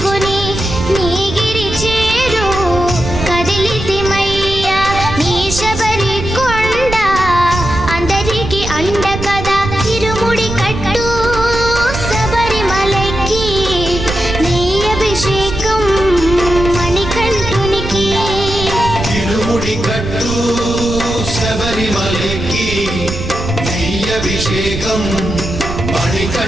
నీగిరి చేరు కదిలితిమయ్యా నీ శబరి కొండ అందరికి అండ కదా ఇరుముడి కట్టు శబరిమలకి నీ అభిషేకం మణికంఠునికి ఇరుముడి కట్టు శబరిమలకి, నెయ్యభిషేకం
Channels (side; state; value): right; noise; rumble, 7 dB below the sound